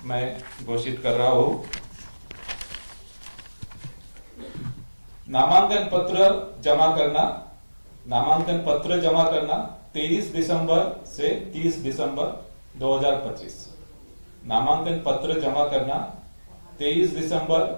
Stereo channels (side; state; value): both; inverted; correlation -1.00